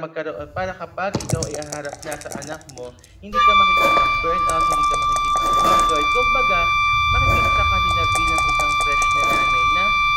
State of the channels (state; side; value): identical; both; correlation 1.00